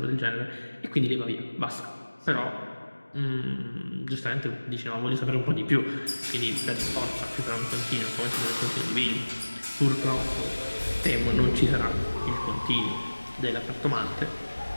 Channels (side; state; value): both; inverted; correlation -1.00